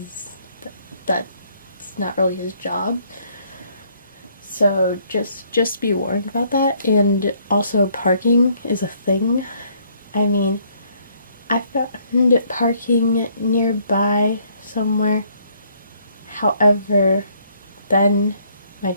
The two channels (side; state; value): both; inverted; correlation -0.66